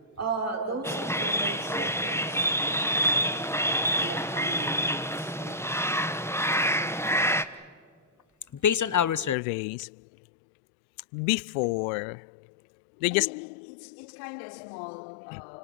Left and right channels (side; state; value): right; drops out; at 9.3 s